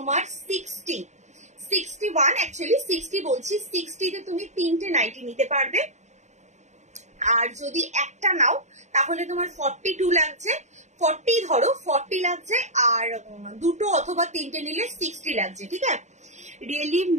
61, অ্যাকচুয়ালি 60 বলছি, 60তে তুমি 3টে নাইটি নিতে পারবে, আর যদি একটা নাও তাহলে তোমার 42 লাগছে, 40 ধরো, 40 লাগছে, আর দুটো অথবা 3টে নিলে 60 লাগছে, ঠিক আছে। रियली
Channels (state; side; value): late; left; 0.34 ms